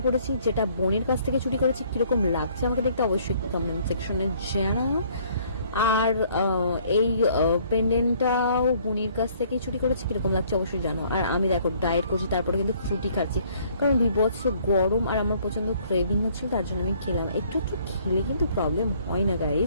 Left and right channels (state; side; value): inverted; both; correlation -0.61